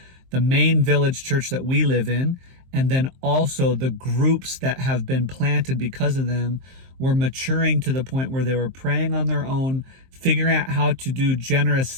the main village church that we live in, and then also the groups that have been planted because of them, were maturing to the point where they were praying on their own, figuring out how to do generous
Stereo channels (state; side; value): late; left; 23 ms